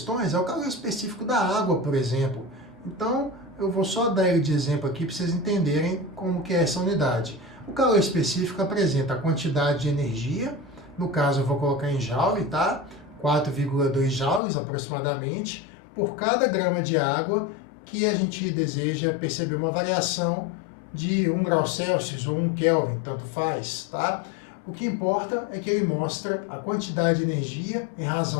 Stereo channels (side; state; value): right; drops out; at 14.4 s